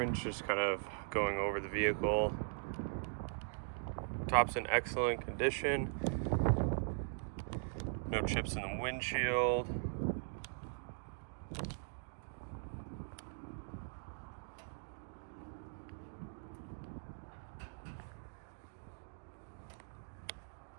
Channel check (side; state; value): left; silent; digital silence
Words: Just kind of going over the vehicle. Top's in excellent condition. No chips in the windshield.